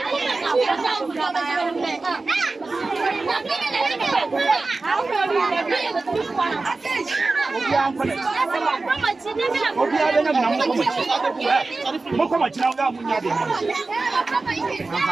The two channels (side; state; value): left; quieter; 3.6 dB